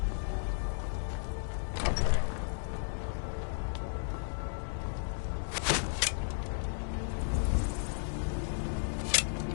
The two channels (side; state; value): right; silent; 55 dB below the other